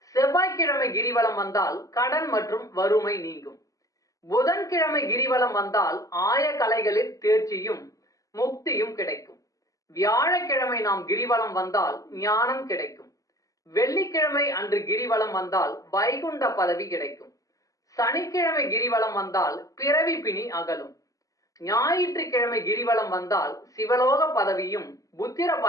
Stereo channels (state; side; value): late; right; 0.16 ms